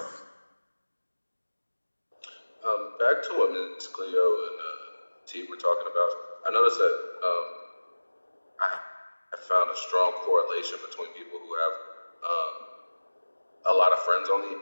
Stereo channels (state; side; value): inverted; both; correlation -1.00